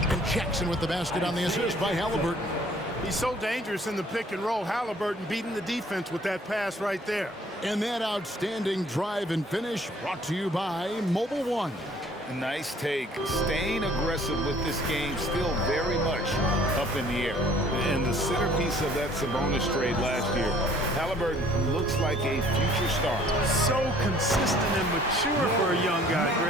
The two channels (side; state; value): both; normal; correlation 0.56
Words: And Jackson with the basket on the assist by Halliburton. He's so dangerous in the pick and roll. Halliburton beating the defense with that pass right there. And that outstanding drive and finish brought to you by Mobile One. Nice take. Staying aggressive with this game, still very much up in the air. And the centerpiece of that Sabonis trade last year, Halliburton looks like a future star. So consistent and mature for a young guy,